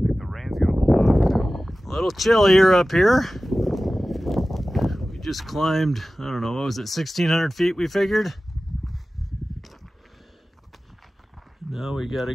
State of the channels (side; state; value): both; normal; correlation 0.96